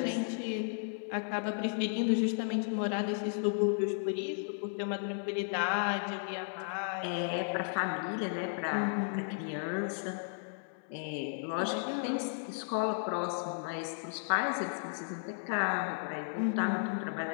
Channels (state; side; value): silent; right; digital silence